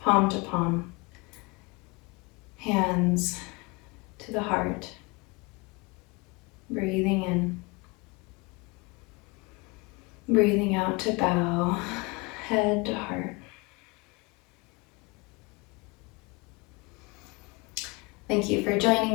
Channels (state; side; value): quieter; right; 26.6 dB